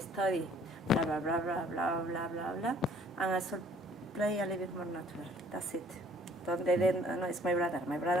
blah, blah, blah, blah, blah, blah, blah, blah, and I should play a little bit more natural. That's it. They didn't, no, it's my brother. My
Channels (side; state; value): both; normal; correlation 0.57